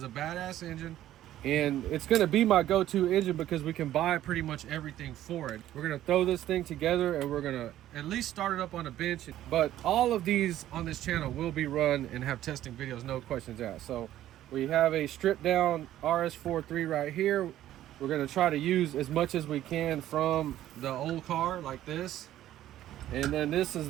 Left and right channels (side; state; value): left; quieter; 13.0 dB